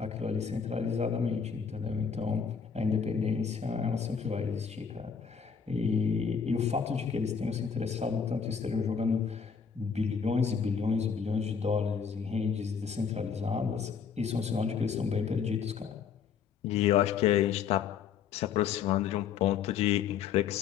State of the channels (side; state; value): right; quieter; 6.6 dB